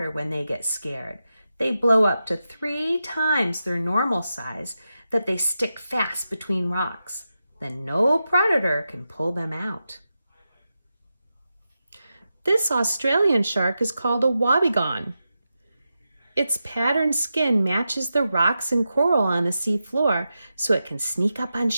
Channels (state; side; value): inverted; both; correlation -0.90